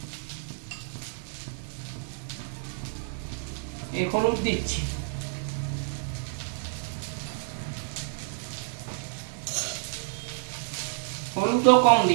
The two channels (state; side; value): silent; left; digital silence